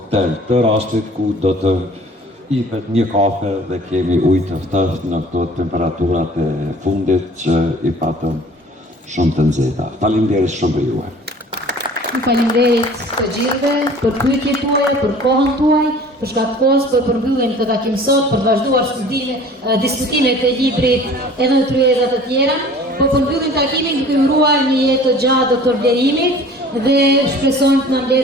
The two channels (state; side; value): normal; both; correlation 0.48